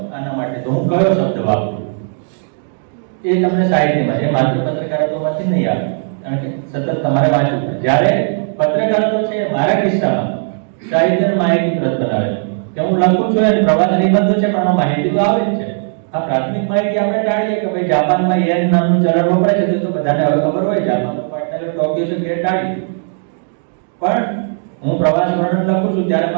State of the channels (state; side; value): silent; left; 58 dB below the other